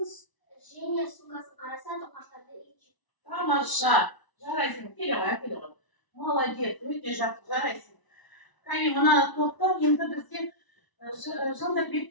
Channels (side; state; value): right; late; 1.0 ms